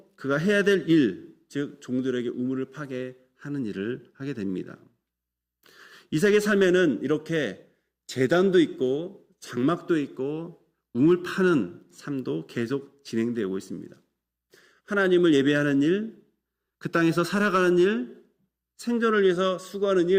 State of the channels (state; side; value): identical; both; correlation 1.00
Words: 그가 해야 될 일, 즉 종들에게 우물을 파게 하는 일을 하게 됩니다. 이삭의 삶에는 이렇게 제단도 있고 장막도 있고 우물 파는 삶도 계속 진행되고 있습니다. 하나님을 예배하는 일, 그 땅에서 살아가는 일, 생존을 위해서 수고하는